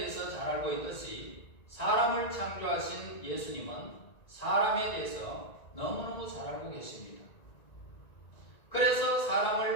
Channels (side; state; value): right; late; 1.9 ms